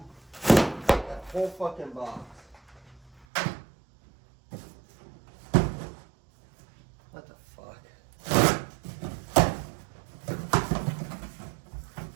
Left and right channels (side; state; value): left; drops out; at 3.2 s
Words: that whole fucking box. What the fuck?